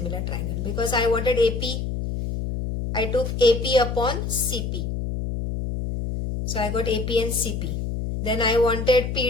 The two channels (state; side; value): noise; left; hum, 3 dB below the sound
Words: triangle. Because I wanted AP, I took AP upon CP. So I got AP and CP. Then I wanted